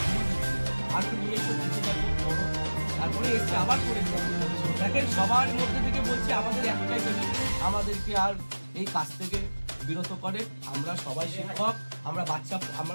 আর তো নিজস্ব কিছু দেখো বড়, তারপরে এসে আবার করেছে। দেখেন সবার মধ্যে থেকে বলছি আমাদের একটাই দাবি, আমাদেরকে আর এই কাজ থেকে বিরত করে। আমরা সবাই শিক্ষক, আমরা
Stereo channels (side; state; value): both; inverted; correlation -1.00